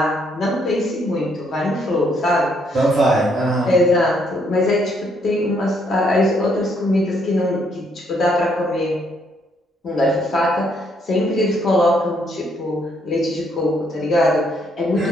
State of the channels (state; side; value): normal; both; correlation 0.71